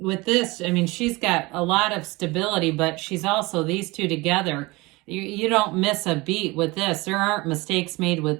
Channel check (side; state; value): left; quieter; 23.2 dB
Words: this, I mean, she's got a lot of stability, but she's also, these two together, you don't miss a beat with this. There aren't mistakes made with